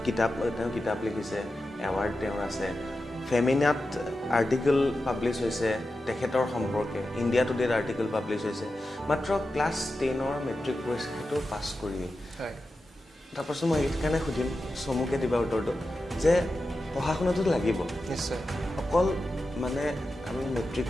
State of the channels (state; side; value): normal; both; correlation 0.91